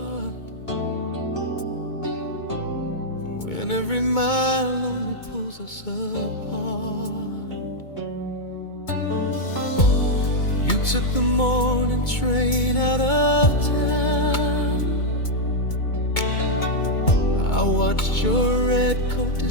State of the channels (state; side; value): late; right; 2.2 ms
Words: when every mile only pulls us apart. You took the morning train out of town. I watched your red coat